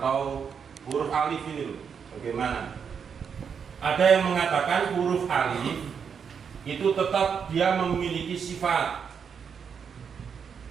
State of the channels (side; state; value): left; quieter; 6.8 dB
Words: huruf alif ini loh. Bagaimana? Ada yang mengatakan huruf alif itu tetap dia memiliki sifat.